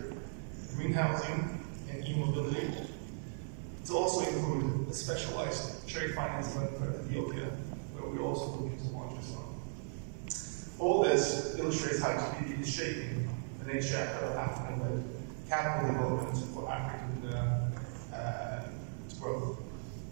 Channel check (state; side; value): silent; left; 53 dB below the other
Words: green housing, and e-mobility. To also include a specialized trade finance fund for Ethiopia, where we're also looking to launch as well. All this illustrates how TDB is shaping the next chapter of African-led capital development for African growth.